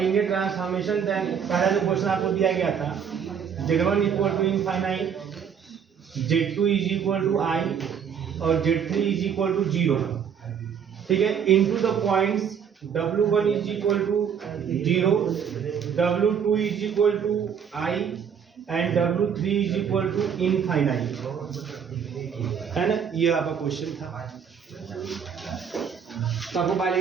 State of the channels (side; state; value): left; quieter; 7.5 dB